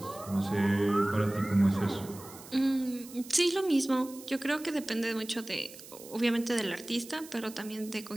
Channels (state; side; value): noise; right; hiss, 17 dB below the sound